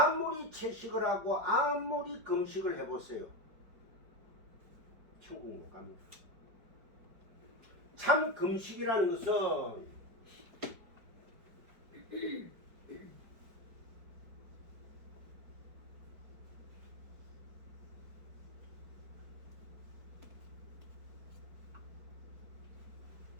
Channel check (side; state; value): left; late; 5.0 ms